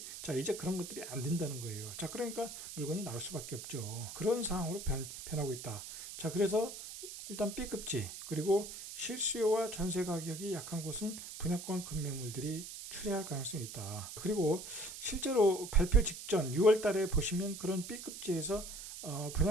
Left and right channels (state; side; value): noise; right; hiss, 10 dB below the sound